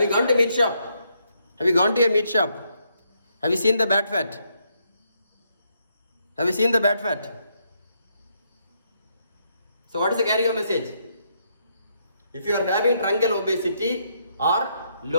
you gone to meat shop? Have you gone to a meat shop? Have you seen the bad fat? Have you seen the bad fat? So what is the carry-on message? If you are having truncal obesity or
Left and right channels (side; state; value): both; inverted; correlation -0.76